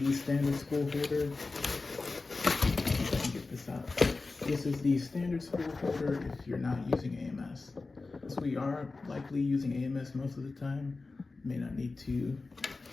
standard spool holder. Let me get this out. This is the standard spool holder if you're not using AMS. So we are likely using AMS most of the time. May not need to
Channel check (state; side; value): quieter; right; 3.7 dB